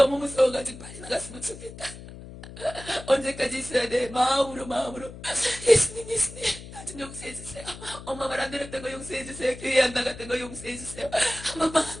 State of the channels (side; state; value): left; noise; hum, 14 dB below the sound